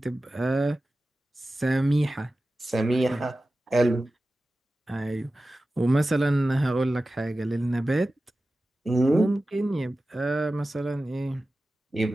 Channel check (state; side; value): normal; both; correlation 0.95